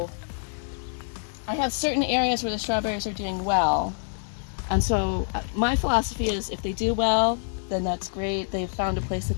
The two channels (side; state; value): right; silent; digital silence